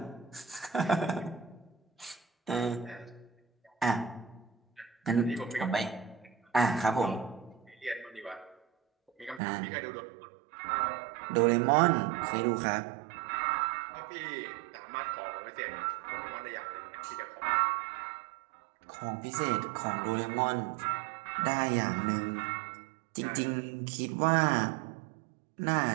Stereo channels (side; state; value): left; drops out; at 9.4 s